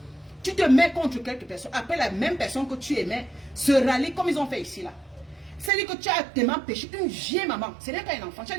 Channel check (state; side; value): drops out; left; at 5.7 s